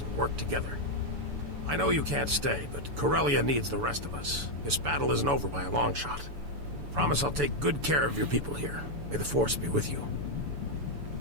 and work together. I know you can't stay, but Corellia needs the rest of us. This battle isn't over by a long shot. Promise I'll take good care of your people here. May the Force be with you.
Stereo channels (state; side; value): late; left; 6.9 ms